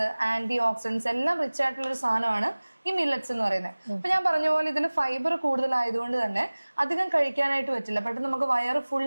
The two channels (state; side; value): inverted; both; correlation -1.00